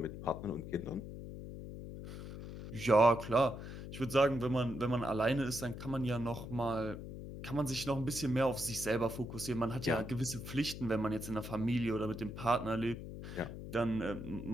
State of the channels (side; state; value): left; noise; hum, 9 dB below the sound